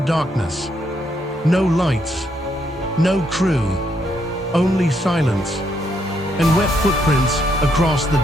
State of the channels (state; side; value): normal; both; correlation 0.75